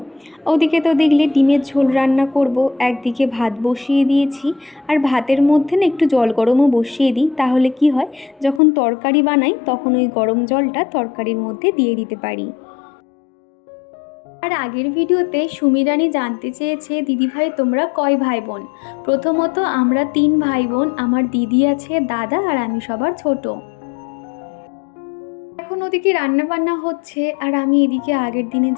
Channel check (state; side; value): drops out; right; at 8.6 s